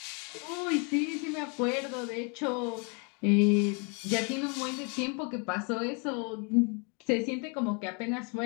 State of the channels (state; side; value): quieter; right; 35.2 dB